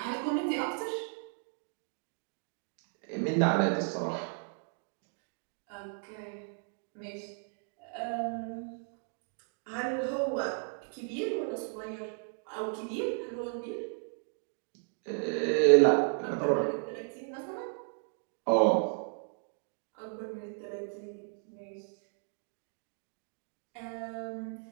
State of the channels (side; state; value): left; silent; 55 dB below the other